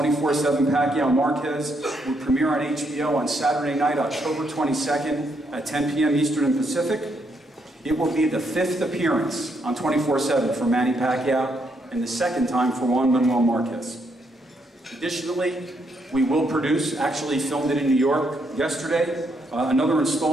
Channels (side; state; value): both; normal; correlation 0.76